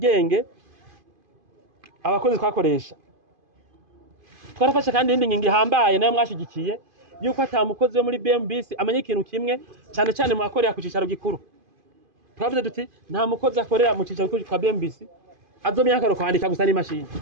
abakozi twakoresha. Twarafashe kandi indi ngingo ihambaye nayo mwashigikiye yuko atamukozi wo muri BMBC amenye ikintu kimwe cyane mu akorera ku cicaro gikuru. Twavuze duti nta mukozi akorera mu cicaro gikuru kwa BMBC azomenya akaro kwandika gusa n'imashini,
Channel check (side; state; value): left; late; 2.5 ms